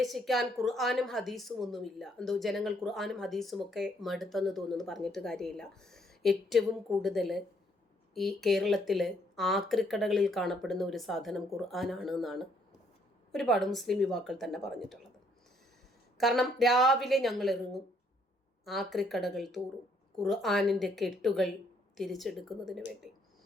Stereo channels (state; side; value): normal; both; correlation 0.68